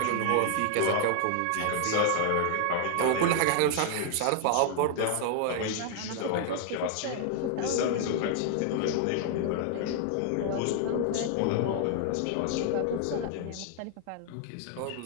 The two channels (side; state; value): both; different; correlation 0.00